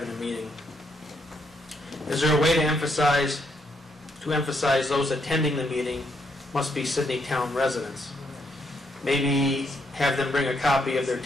a meeting. Is there a way to emphasize those attending the meeting must be Sidney town residents? Maybe have them bring a copy of their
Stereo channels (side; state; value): both; normal; correlation 0.75